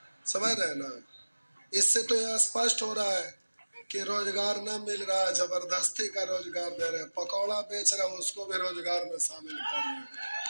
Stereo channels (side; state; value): both; inverted; correlation -1.00